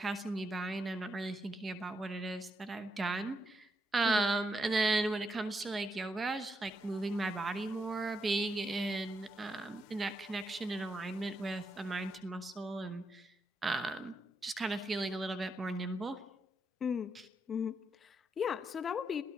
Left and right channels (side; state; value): both; normal; correlation 0.82